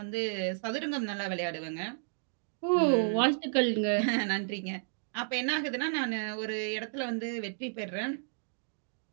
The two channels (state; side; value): silent; left; digital silence